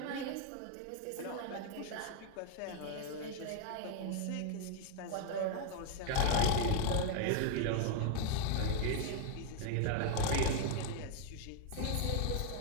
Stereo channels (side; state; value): both; different; correlation 0.00